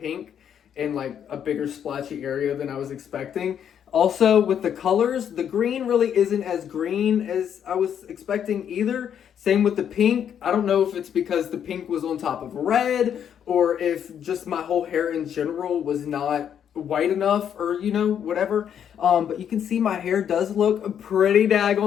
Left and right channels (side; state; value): right; quieter; 8.8 dB